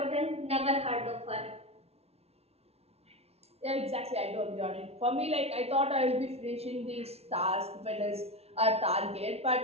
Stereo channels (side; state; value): left; late; 0.30 ms